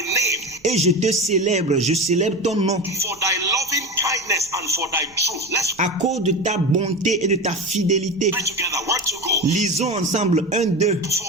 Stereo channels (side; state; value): right; noise; rumble, 29 dB below the sound